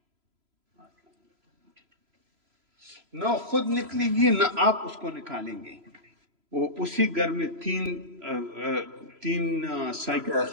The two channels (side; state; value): left; late; 3.0 ms